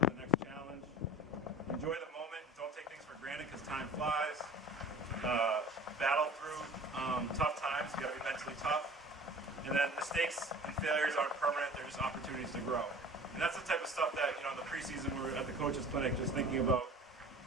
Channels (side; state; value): both; normal; correlation 0.42